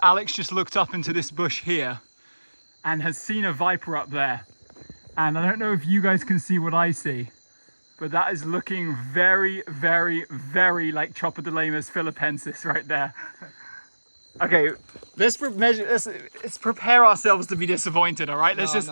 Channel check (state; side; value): inverted; both; correlation -1.00